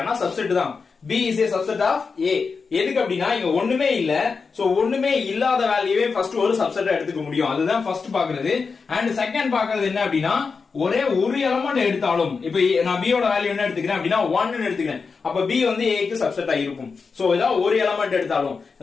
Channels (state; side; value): quieter; right; 5.0 dB